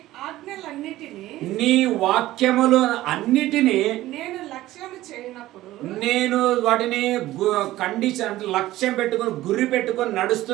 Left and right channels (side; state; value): left; quieter; 15.9 dB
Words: ఆజ్ఞలన్నిటినీ నీ వాక్యములు అన్నిటినీ నేను లక్ష్యం చేయనప్పుడు నేను వాటిని కండిషన్ అంటే లక్ష్యం పెట్టుకొని గురి పెట్టుకొని